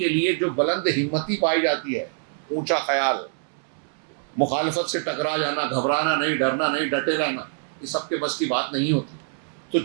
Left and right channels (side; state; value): left; silent; digital silence